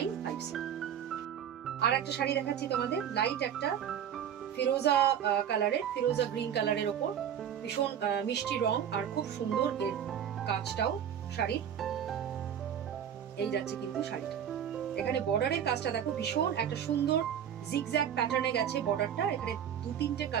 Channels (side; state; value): left; quieter; 9.2 dB